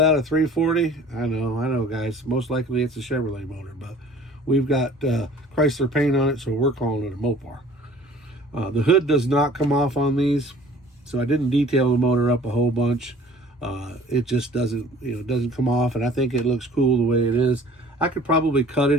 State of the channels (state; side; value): normal; both; correlation 0.50